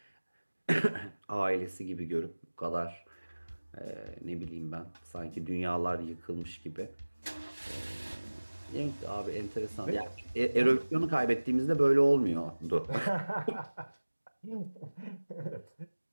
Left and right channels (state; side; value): inverted; both; correlation -1.00